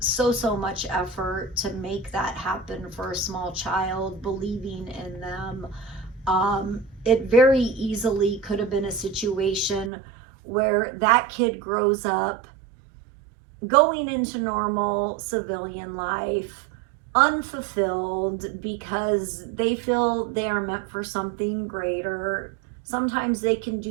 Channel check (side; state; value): left; drops out; at 9.9 s